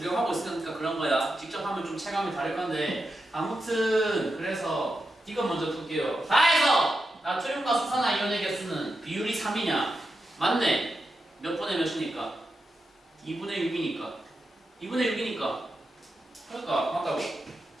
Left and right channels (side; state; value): both; normal; correlation 0.88